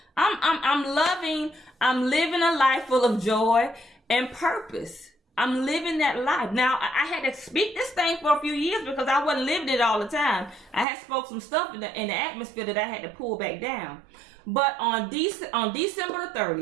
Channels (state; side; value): drops out; left; at 10.9 s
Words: I'm living a life full of joy and purpose. I'm living that life. Now, I had to speak this thing for a few years because I wasn't living it all the time. I had spoke some stuff in the atmosphere that I had to pull back down. But on December the